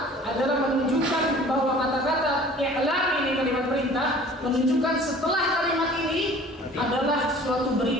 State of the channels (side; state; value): both; normal; correlation 0.48